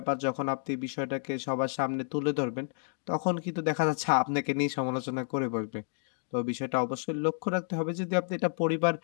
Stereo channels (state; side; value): silent; right; digital silence